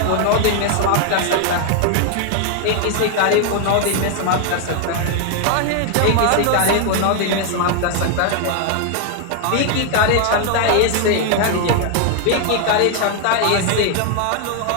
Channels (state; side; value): different; both; correlation 0.00